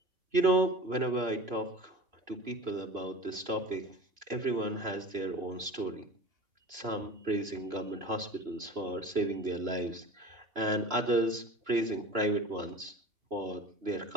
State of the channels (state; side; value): late; left; 2.9 ms